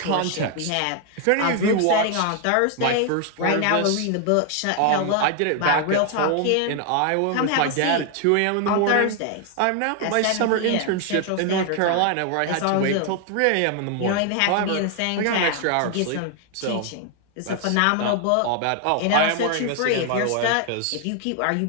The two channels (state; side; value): different; both; correlation 0.00